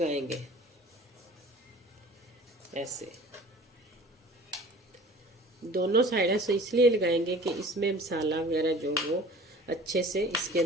ऐसे, दोनों साइड से इसलिए लगाएंगे कि इसमें मसाला वगैरह जो वो अच्छे से इसके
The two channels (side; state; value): both; normal; correlation 0.45